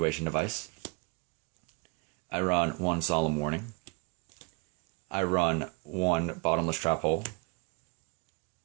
Device. I run 1 Solemn Warning. I run 1 Bottomless Trap Hole.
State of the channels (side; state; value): left; quieter; 31.4 dB